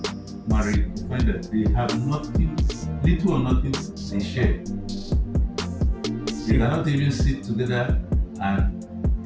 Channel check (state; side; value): identical; both; correlation 1.00